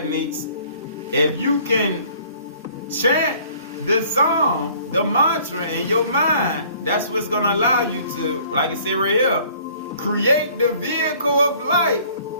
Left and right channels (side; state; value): both; inverted; correlation -0.55